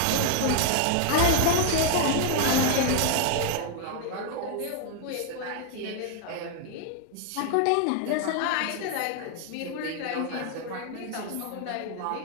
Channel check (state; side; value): different; both; correlation 0.00